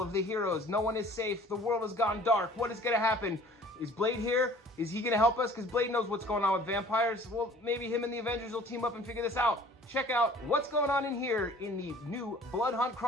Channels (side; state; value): both; normal; correlation 0.50